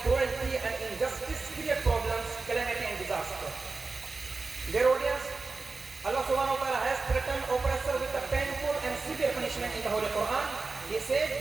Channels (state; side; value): quieter; left; 3.9 dB